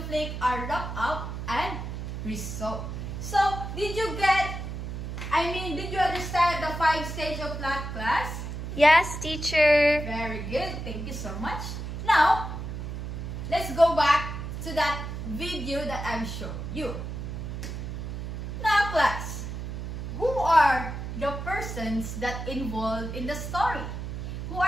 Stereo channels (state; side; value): noise; right; hum, 6 dB below the sound